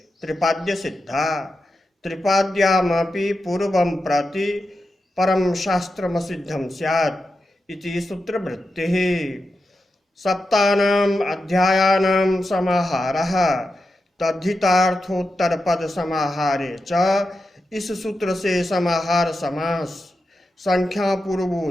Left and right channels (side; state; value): both; normal; correlation 0.90